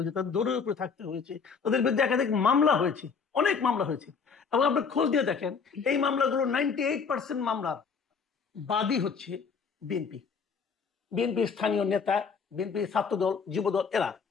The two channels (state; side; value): quieter; right; 5.7 dB